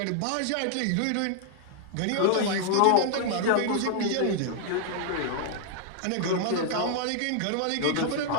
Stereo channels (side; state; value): both; different; correlation -0.01